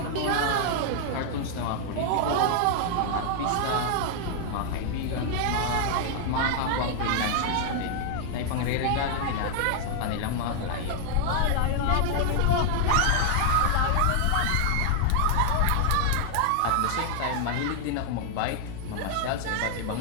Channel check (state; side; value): different; both; correlation 0.00